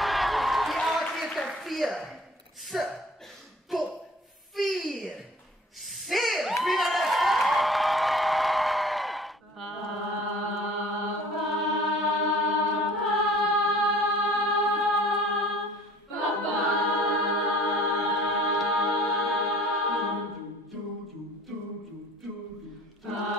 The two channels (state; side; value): normal; both; correlation 0.49